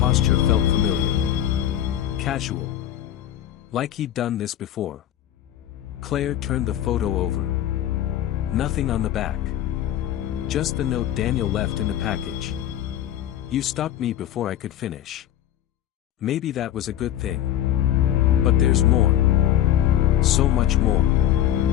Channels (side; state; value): right; quieter; 11.8 dB